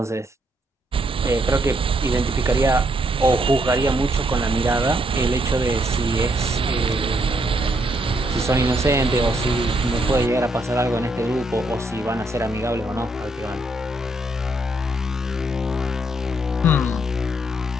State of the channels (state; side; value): normal; both; correlation 0.74